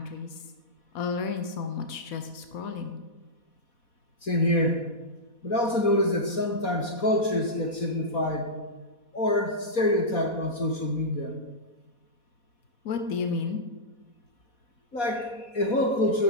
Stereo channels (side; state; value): right; late; 4.1 ms